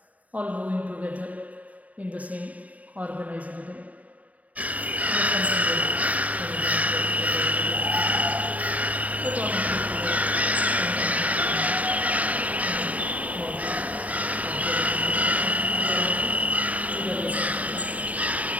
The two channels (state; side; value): late; left; 0.071 ms